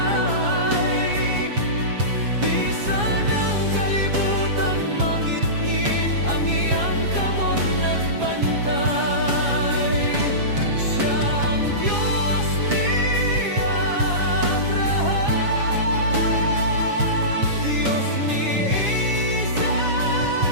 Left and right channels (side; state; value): left; late; 7.3 ms